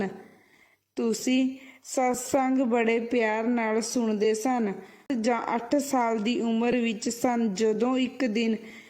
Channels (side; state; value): both; identical; correlation 1.00